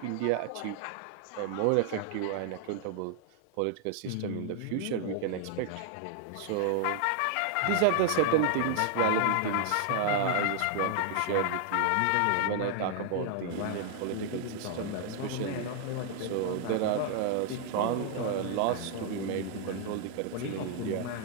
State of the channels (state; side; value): different; both; correlation 0.00